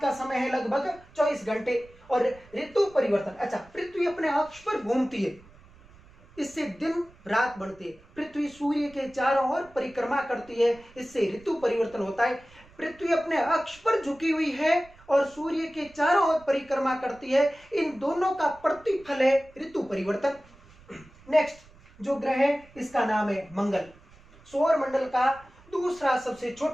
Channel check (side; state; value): right; noise; rumble, 25 dB below the sound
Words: का समय है लगभग 24 घंटे, और ऋतु परिवर्तन। अच्छा, पृथ्वी अपने अक्ष पर घूमती है, इससे दिन रात बढ़ती है। पृथ्वी सूर्य के चारों ओर परिक्रमा करती है, इससे ऋतु परिवर्तन होता है। पृथ्वी अपने अक्ष पर झुकी हुई है और सूर्य के चारों ओर परिक्रमा करती है, इन दोनों का प्रतिफल है ऋतु परिवर्तन। नेक्स्ट जो ग्रह है इसका नाम है मंगल, सौर मंडल का दूसरा सबसे